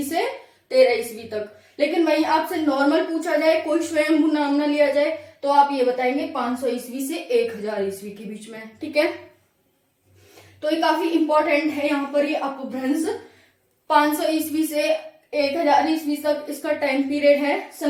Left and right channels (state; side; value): identical; both; correlation 1.00